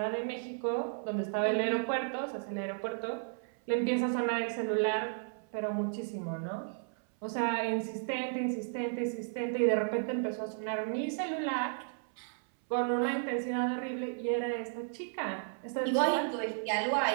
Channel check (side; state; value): left; silent; 55 dB below the other